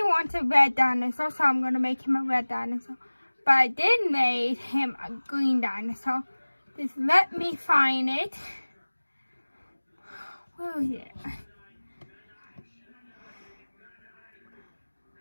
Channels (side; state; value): both; inverted; correlation -1.00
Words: wants a red dinosaur, so I'm going to make him a red dinosaur. But I did make him a green dinosaur. Just let me find it. Where is it?